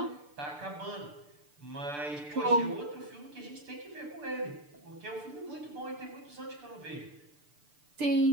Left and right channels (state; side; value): late; left; 6.8 ms